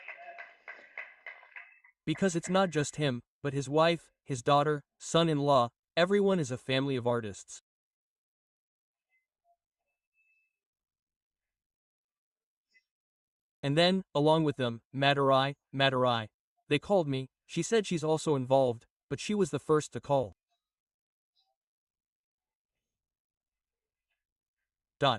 Because it's not just him, but his wife, his daughter, son-in-law, everyone is a family of artists. And then, along with them, Madurai. They called me, she said she's also involved, but she was the first to call.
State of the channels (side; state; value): both; identical; correlation 1.00